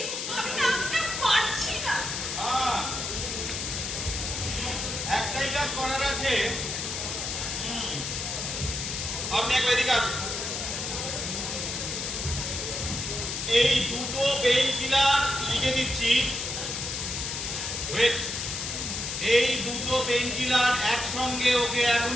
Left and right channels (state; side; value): noise; left; hiss, 3 dB below the sound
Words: আমি না পারছি না। হ্যাঁ, একটাই কাজ করার আছে। আপনি একবার এদিকে আসুন। এই দুটো পেইন কিলার লিখে দিচ্ছি। ওয়েট, এই দুটো পেইন কিলার একসঙ্গে ওকে